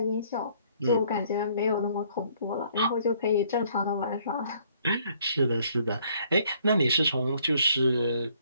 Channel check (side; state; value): both; inverted; correlation -0.63